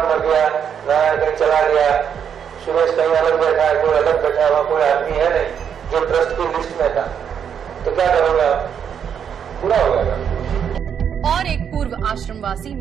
मर गया, कहीं चला गया, सुरेश कहीं अलग बैठा है, कोई अलग बैठा हुआ कोई आदमी है नहीं जो ट्रस्ट की लिस्ट में था, तो क्या करोगे आप? पूरा हो जाएगा। और एक पूर्व आश्रमवासी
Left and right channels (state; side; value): quieter; left; 7.9 dB